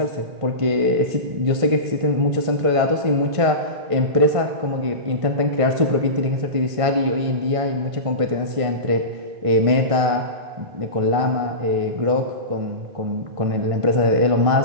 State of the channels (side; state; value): left; late; 1.5 ms